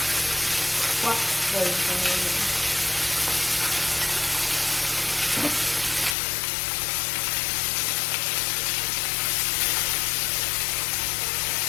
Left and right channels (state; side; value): drops out; right; at 6.2 s